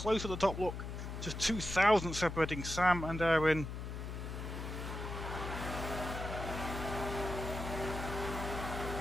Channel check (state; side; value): noise; left; hum, 6 dB below the sound